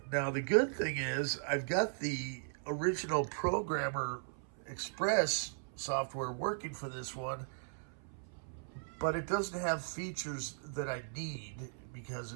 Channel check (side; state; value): left; silent; 53 dB below the other